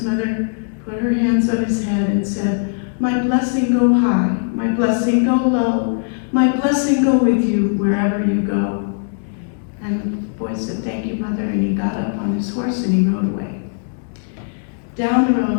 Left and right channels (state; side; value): silent; right; digital silence